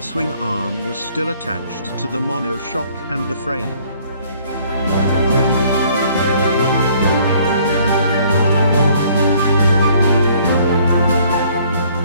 swing arm was still attached to the monoshock and the frame.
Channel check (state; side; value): inverted; both; correlation -0.60